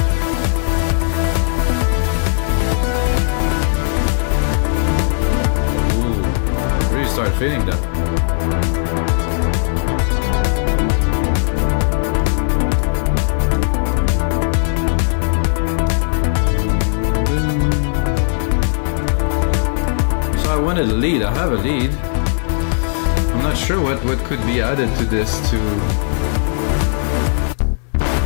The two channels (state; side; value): silent; right; digital silence